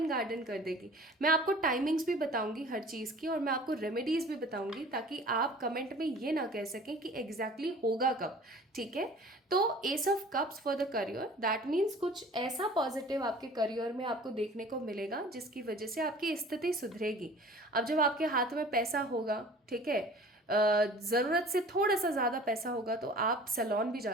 गार्डन कर देगी। मैं आपको टाइमिंग्स भी बताऊंगी हर चीज़ की, और मैं आपको रेमेडीज भी बताऊंगी ताकि आप कमेंट में ये ना कह सकें कि एग्जैक्टली होगा कब, ठीक है। तो S of cups for the career, that means कुछ ऐसा पॉजिटिव आपके करियर में आपको देखने को मिलेगा जिसकी वजह से आपकी स्थिति सुधरेगी। अब जब आपके हाथ में पैसा होगा, ठीक है, ज़रूरत से थोड़ा सा ज़्यादा पैसा होगा, तो आप सैलून भी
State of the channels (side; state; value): both; normal; correlation 0.46